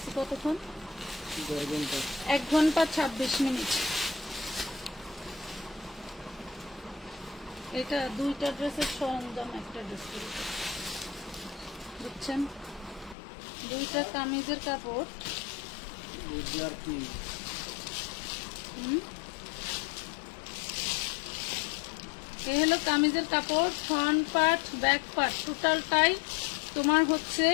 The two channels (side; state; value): right; drops out; at 13.2 s